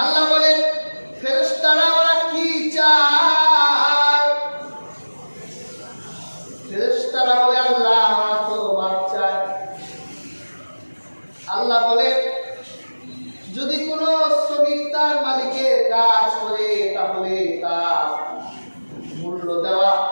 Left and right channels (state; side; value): inverted; both; correlation -1.00